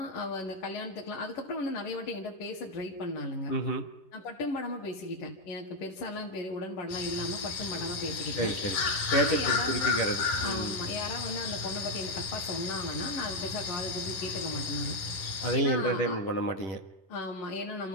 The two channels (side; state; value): right; late; 11 ms